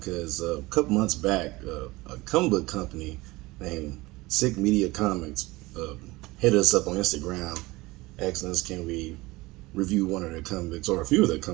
a couple months back, a comic book company named Sick Media Comics hit us up on Instagram, asking us can we review one of their comic books or a few of their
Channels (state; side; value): quieter; left; 21.1 dB